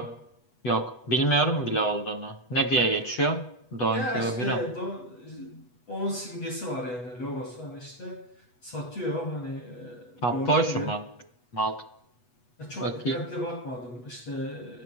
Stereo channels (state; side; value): late; right; 8.2 ms